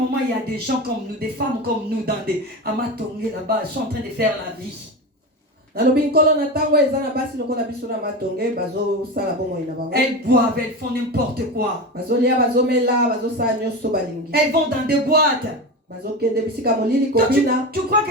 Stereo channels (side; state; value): both; normal; correlation 0.23